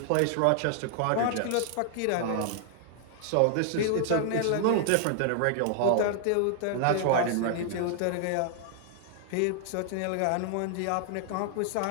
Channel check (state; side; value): different; both; correlation 0.00